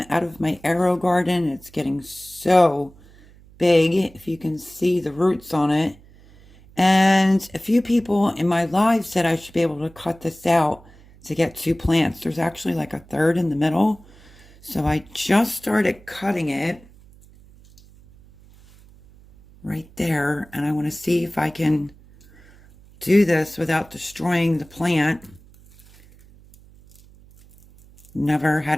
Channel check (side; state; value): right; noise; hum, 25 dB below the sound